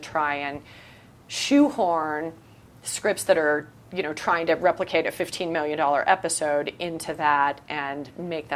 and shoehorn scripts that are, you know, trying to replicate a $15 million episode into that and make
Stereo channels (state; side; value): identical; both; correlation 1.00